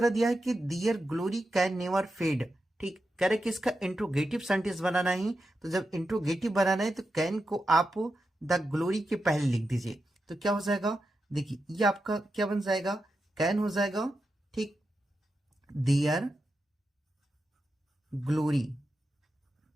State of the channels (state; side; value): normal; both; correlation 0.88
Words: दिया है कि दियर ग्लोरी कैन नेवर फेड। ठीक, कह रहे कि इसका इंट्रोगेटिव सेंटेंस बनाना है, तो जब इंट्रोगेटिव बनाना है तो कैन को आप द ग्लोरी के पहले लिख दीजिए, तो क्या हो जाएगा, देखिए ये आपका क्या बन जाएगा, कैन हो जाएगा। ठीक, दियर ग्लोरी,